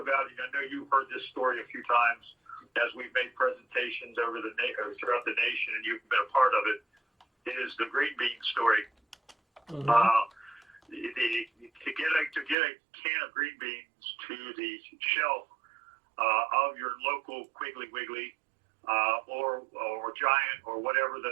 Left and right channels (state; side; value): drops out; left; at 12.6 s